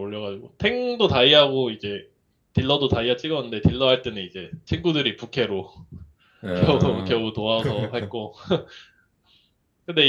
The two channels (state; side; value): identical; both; correlation 1.00